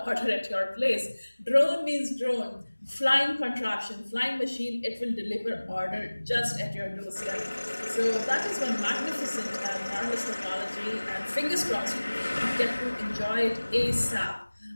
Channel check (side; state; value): both; inverted; correlation -1.00